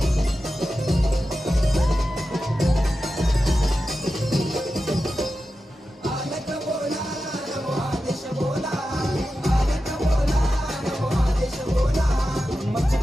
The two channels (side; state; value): both; normal; correlation 0.92